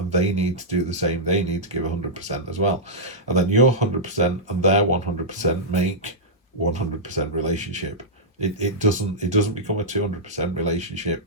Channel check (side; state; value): both; normal; correlation -0.11